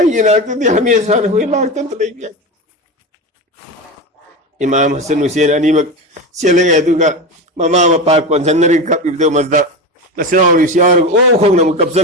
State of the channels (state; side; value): normal; both; correlation 0.22